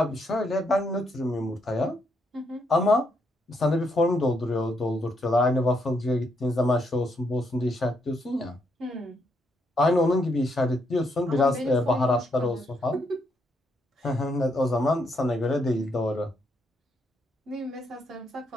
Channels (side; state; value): both; normal; correlation 0.76